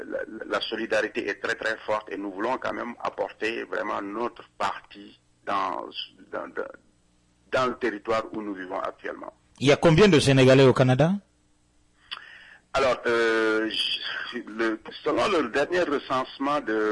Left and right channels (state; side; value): identical; both; correlation 1.00